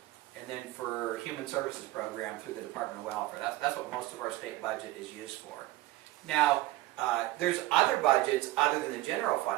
and then for human services program through the Department of Welfare. That's what most of our state budget is used for. Now, there's other budgets other than the general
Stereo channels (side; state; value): left; quieter; 17.3 dB